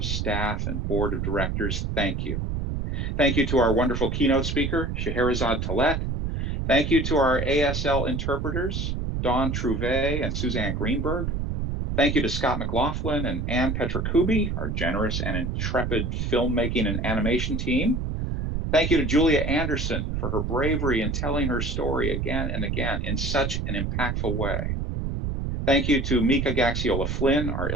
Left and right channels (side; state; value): right; noise; rumble, 1 dB below the sound